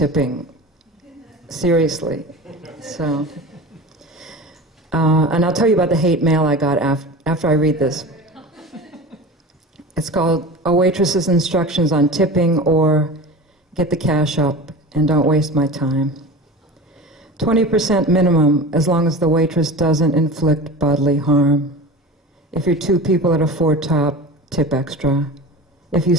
Seriously. So, and I'll tell you about the hate mail I got after I read this. It's called A Waitress's Instructions on Tipping, or Get the Cash Up and Don't Waste My Time. 20% minimum as long as the waitress doesn't inflict bodily harm. If you're two people at a four-top, tip extra. If you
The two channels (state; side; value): normal; both; correlation 0.33